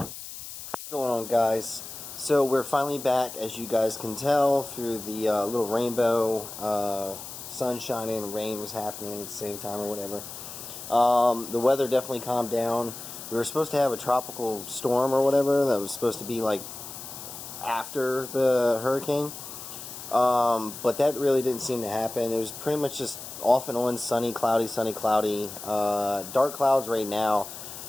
going on, guys? So we're finally back, as you guys can tell, through the little rainbow. Sun shining, rain was happening at the same time or whatever. The weather definitely calmed down. We were supposed to have a tropical storm or whatever that was supposed to be like after the hurricane, but that really didn't seem to happen. It was pretty much just off and on, sunny, cloudy, dark clouds right now.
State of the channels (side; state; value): left; noise; hiss, 11 dB below the sound